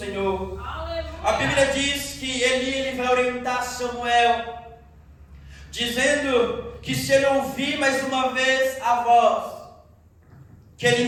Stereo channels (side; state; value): both; identical; correlation 1.00